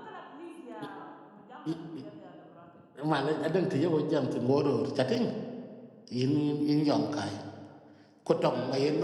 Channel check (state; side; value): identical; both; correlation 1.00